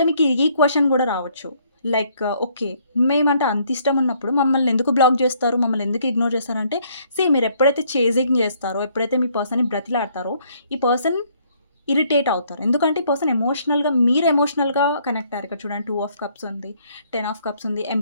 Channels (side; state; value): both; inverted; correlation -0.66